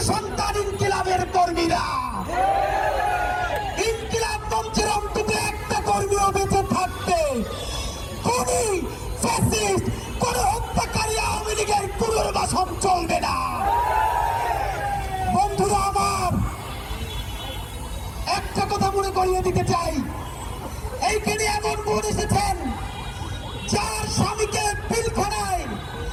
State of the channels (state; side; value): identical; both; correlation 1.00